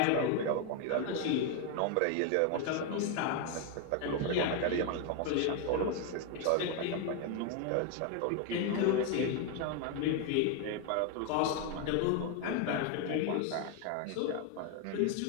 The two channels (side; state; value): both; different; correlation 0.01